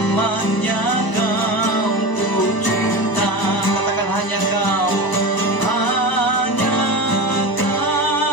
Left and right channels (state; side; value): late; right; 1.0 ms